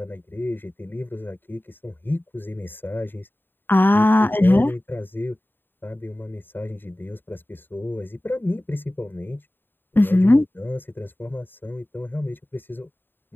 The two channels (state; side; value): late; right; 0.095 ms